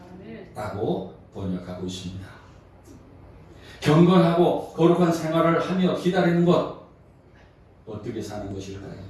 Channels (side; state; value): both; identical; correlation 1.00